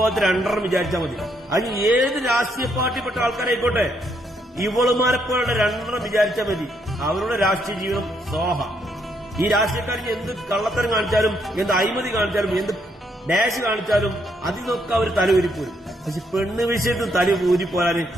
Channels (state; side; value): normal; both; correlation 0.74